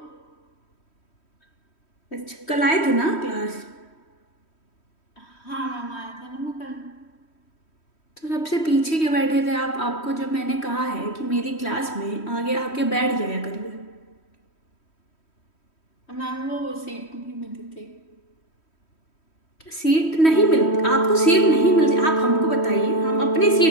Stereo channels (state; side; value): late; right; 3.1 ms